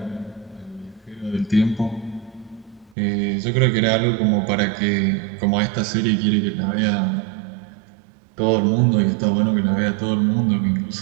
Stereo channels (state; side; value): drops out; left; at 3.0 s